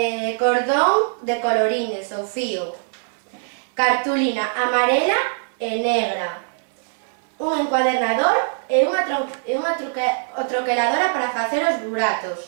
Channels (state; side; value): silent; left; 64 dB below the other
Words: Cordón de colorines ou fío. Cartulina amarela e negra. Un encuadernador e unha troqueladora para facer os